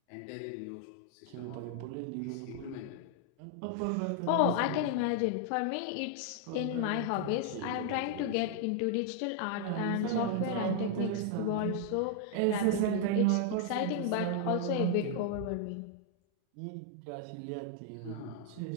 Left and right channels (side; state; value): both; different; correlation 0.00